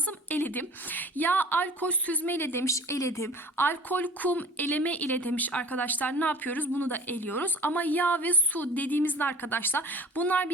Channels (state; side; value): normal; both; correlation 0.43